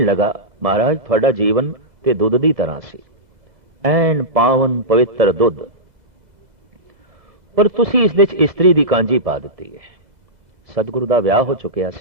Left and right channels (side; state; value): left; late; 2.0 ms